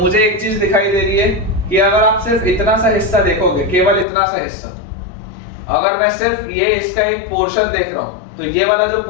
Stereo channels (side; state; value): right; drops out; at 4.0 s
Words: एक चीज दिखाई दे रही है कि अगर आप सिर्फ इतना सा हिस्सा देखोगे, केवल इतना सा हिस्सा, अगर मैं सिर्फ ये इसका एक पोर्शन देख रहा हूं तो ये वाला जो